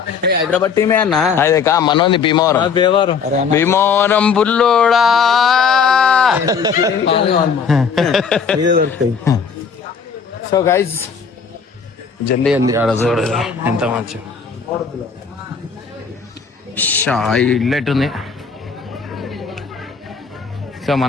హైదరాబాద్ టీమే అన్న. అదే కా మనోంది భీమవరం బుల్లోడా దొరుకుతాయి. సో గైజ్ జల్దీ అంది ఆడ చూడు ఎంత మంచి ఇల్లు ఎట్టుంది. సో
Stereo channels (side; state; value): right; quieter; 6.0 dB